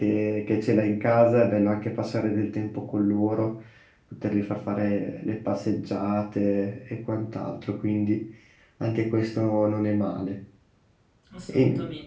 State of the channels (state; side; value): identical; both; correlation 1.00